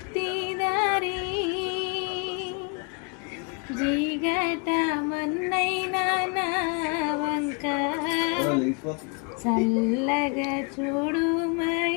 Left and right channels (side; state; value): right; quieter; 33.7 dB